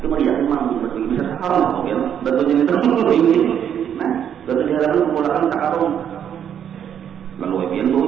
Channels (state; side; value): quieter; left; 9.0 dB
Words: mau yakin mampu batu bisa sekarang mungkin batunya itu ini. Nah, batu di halaman kepulauan takarung. Lalu Ebian